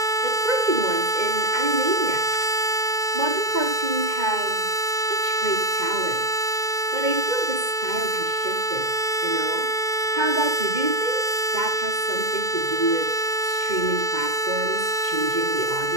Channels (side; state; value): left; late; 2.1 ms